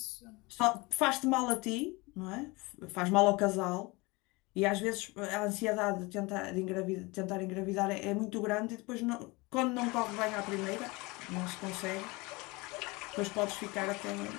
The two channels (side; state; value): right; quieter; 24.7 dB